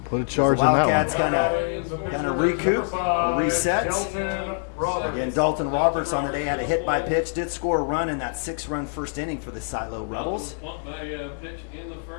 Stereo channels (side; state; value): right; silent; digital silence